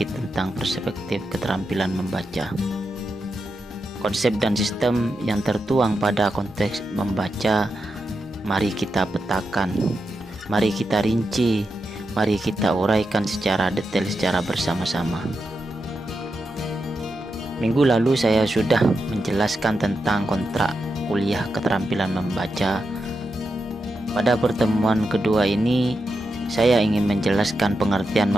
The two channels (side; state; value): both; normal; correlation 0.87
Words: tentang perspektif keterampilan membaca. Konsep dan sistem yang tertuang pada konteks membaca, mari kita petakan, mari kita rinci, mari kita uraikan secara detail secara bersama-sama. Minggu lalu saya sudah menjelaskan tentang kontrak kuliah keterampilan membaca. Pada pertemuan kedua ini, saya ingin menjelaskan pengertian